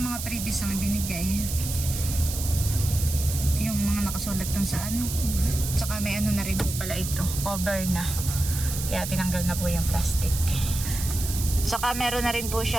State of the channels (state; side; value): noise; right; hiss, 6 dB below the sound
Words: mga previous ang binigay? Yung mga nakasulat dun sa ano. Tsaka may ano na rin po pala ito. Cover na. Kaya tinanggal na po yung plastic. Tsaka meron na rin po